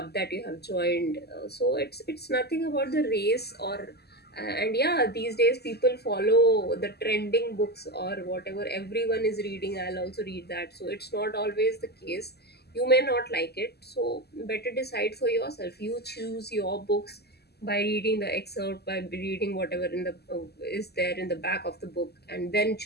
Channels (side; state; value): right; late; 0.47 ms